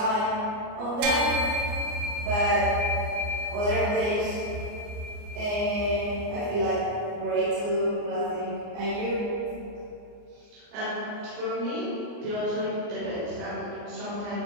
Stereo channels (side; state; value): left; late; 29 ms